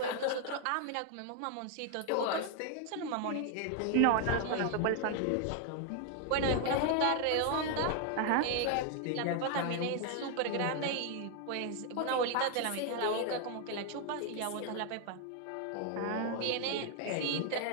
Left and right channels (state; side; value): different; both; correlation 0.00